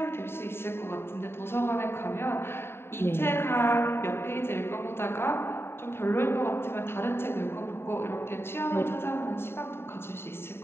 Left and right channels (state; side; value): late; right; 0.11 ms